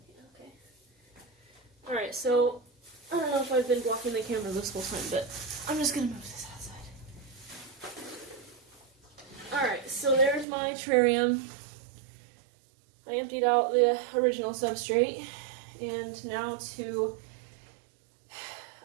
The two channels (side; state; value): left; drops out; at 10.5 s